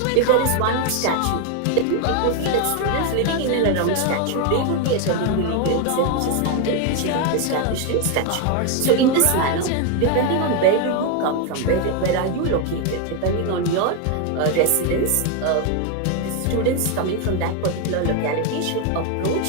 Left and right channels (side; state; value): both; different; correlation 0.01